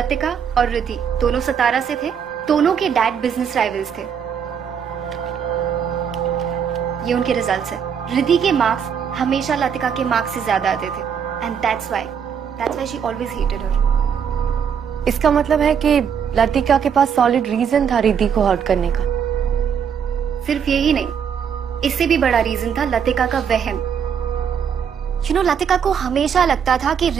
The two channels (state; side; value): quieter; left; 7.5 dB